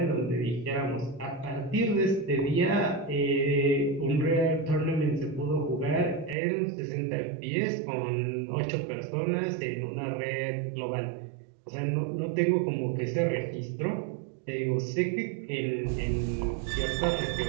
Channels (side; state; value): left; drops out; at 6.4 s